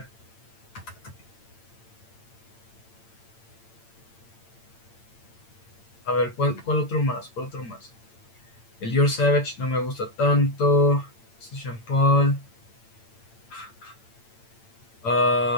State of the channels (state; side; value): late; right; 8.8 ms